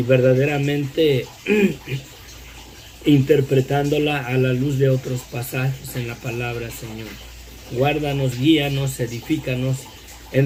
verdaderamente interpretándola a la luz de otros pasajes en la palabra, Señor. Guárdanos, guíanos, edifícanos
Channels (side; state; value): both; identical; correlation 1.00